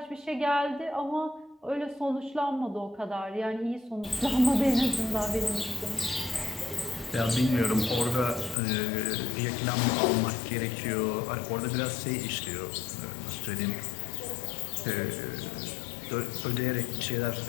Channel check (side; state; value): right; drops out; at 8.6 s